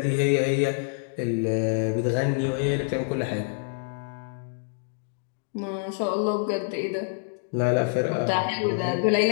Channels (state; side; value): silent; right; digital silence